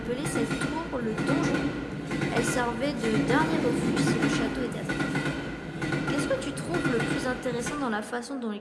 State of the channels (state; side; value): identical; both; correlation 1.00